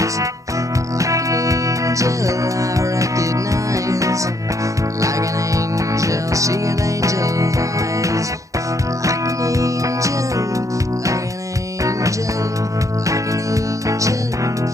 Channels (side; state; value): left; late; 0.16 ms